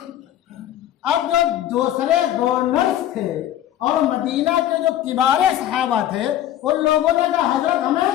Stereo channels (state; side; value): quieter; right; 12.2 dB